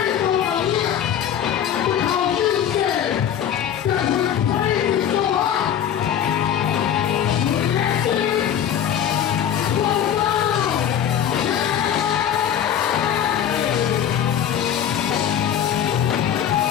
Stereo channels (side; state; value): right; quieter; 9.4 dB